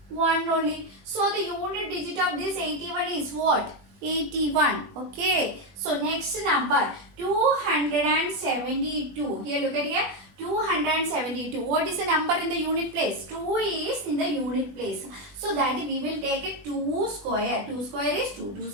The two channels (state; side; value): late; left; 20 ms